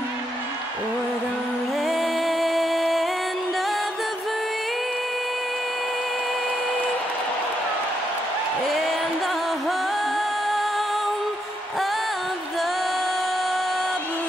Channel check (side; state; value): both; normal; correlation 0.79